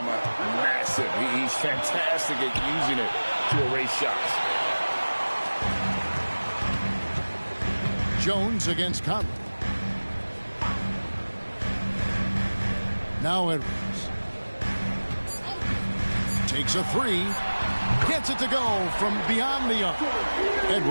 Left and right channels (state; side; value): inverted; both; correlation -1.00